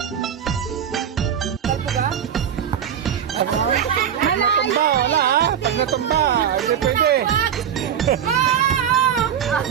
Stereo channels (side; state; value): left; quieter; 8.8 dB